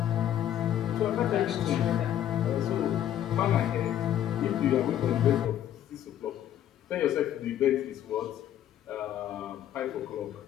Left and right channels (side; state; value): right; quieter; 11.1 dB